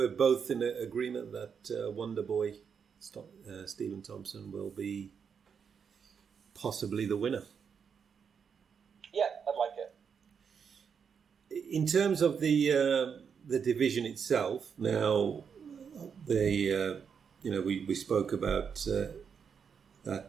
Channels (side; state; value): left; quieter; 6.7 dB